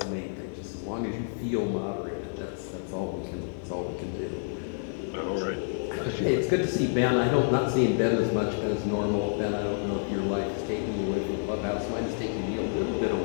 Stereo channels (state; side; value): silent; right; digital silence